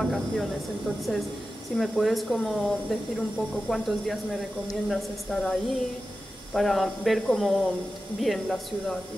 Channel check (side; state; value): both; normal; correlation 0.93